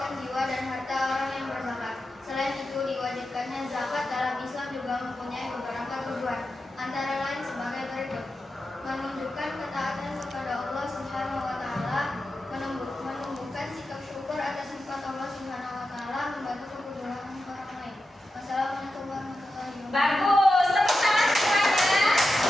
jiwa dan harta orang yang berzakat. Selain itu, diwajibkannya zakat dalam Islam juga mempunyai beberapa tujuan, antara lain sebagai berikut: menunjukkan ketaatan kepada Allah Subhanahu wa Ta'ala, menumbuhkan sikap syukur atas nikmat Allah membantu kebutuhan orang lain. Wassalamualaikum warahmatullahi wabarakatuh. Bagus, tepuk tangan semuanya.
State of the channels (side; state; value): both; normal; correlation 0.90